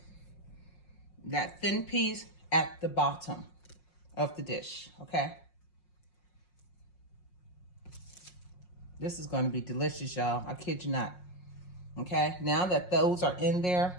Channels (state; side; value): late; right; 5.5 ms